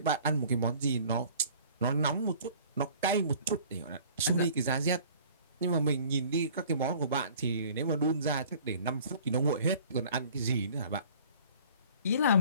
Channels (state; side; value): inverted; both; correlation -0.50